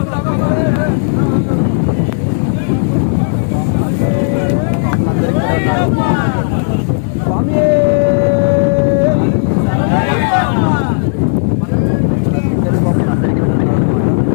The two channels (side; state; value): right; silent; digital silence